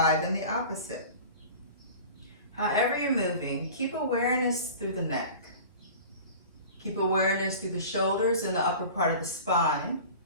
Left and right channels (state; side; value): inverted; both; correlation -0.39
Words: in the opposite. However you're moving, keep awareness through the neck. Keep awareness through the shoulders and the upper part of the spine.